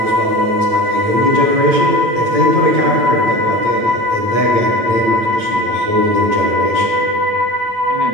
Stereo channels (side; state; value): left; late; 8.8 ms